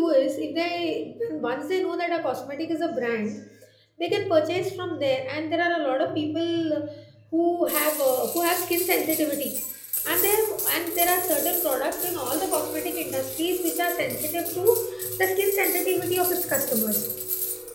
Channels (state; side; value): identical; both; correlation 1.00